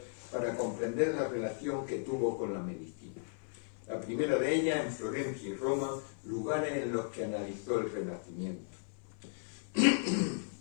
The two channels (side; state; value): right; silent; 54 dB below the other